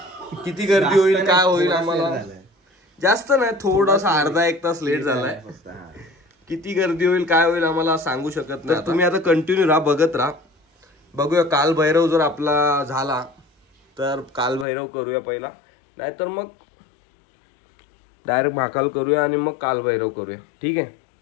किती गर्दी होईल काय होईल आम्हाला जास्त नाही, थोडासा अर्धा एक तास लेट झालाय। किती गर्दी होईल काय होईल आम्हाला सांगू शकत नाही। तुम्ही आता कंटिन्यू राहा, बघत राहा। बघूया काल भैरव जर आपला झाला तर काल भैरव करूया पहिला, नाहीतर मग डायरेक्ट महाकाल करूया आणि मग काल भैरव करूया। ठीक आहे।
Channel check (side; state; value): right; drops out; at 14.7 s